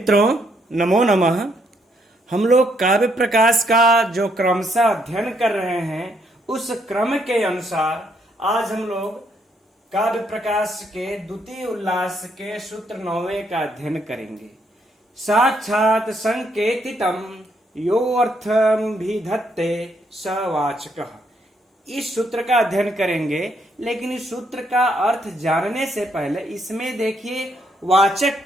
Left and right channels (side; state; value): both; normal; correlation 0.73